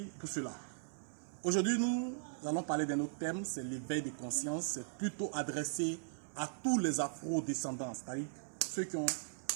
pour cela. Aujourd'hui, nous allons parler d'un autre thème, c'est l'éveil de conscience. C'est plutôt adressé à tous les afro-descendants, c'est-à-dire ceux qui ont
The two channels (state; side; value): silent; left; 52 dB below the other